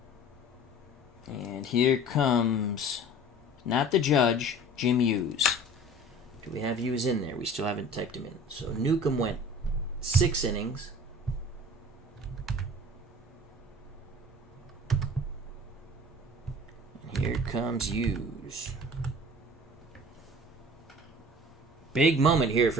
And here comes, not the judge, Jim Hughes. Do we have Hughes in there? We still haven't typed him in. So Newcombe went 6 innings. Here comes Hughes. Big moment here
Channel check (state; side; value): normal; both; correlation 0.44